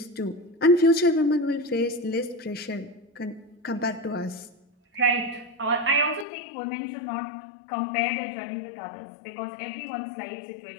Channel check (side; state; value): right; drops out; at 6.2 s